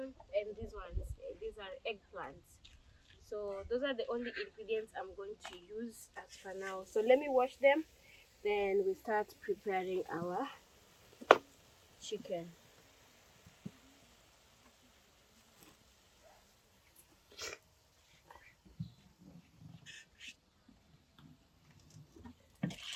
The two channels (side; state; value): both; identical; correlation 1.00